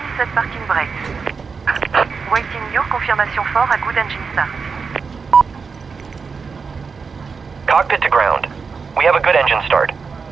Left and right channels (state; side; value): quieter; left; 5.2 dB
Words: Set parking brakes. Waiting your confirmation for a good engine start. Cockpit to ground. We have a good engine start.